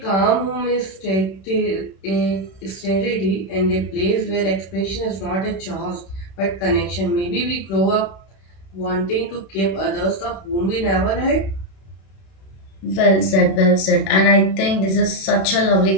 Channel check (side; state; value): right; late; 31 ms